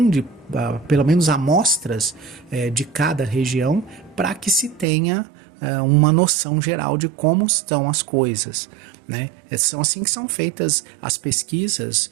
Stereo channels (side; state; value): left; drops out; at 4.9 s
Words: pelo menos amostras de cada região, para que se tenha uma noção geral de como estão as coisas, né? São assim que são feitas as pesquisas